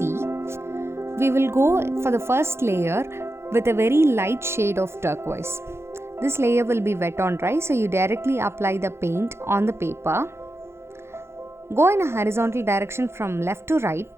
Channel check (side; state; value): left; late; 0.12 ms